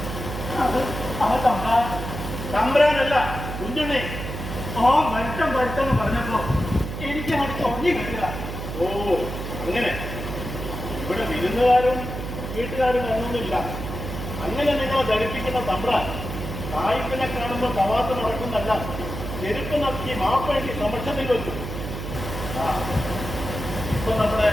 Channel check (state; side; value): noise; right; hum, 6 dB below the sound